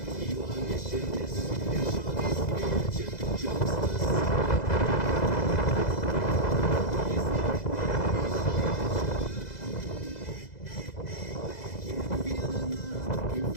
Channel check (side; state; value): right; late; 2.0 ms